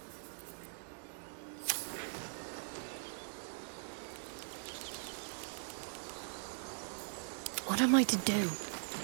What am I to do?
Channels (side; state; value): left; silent; 51 dB below the other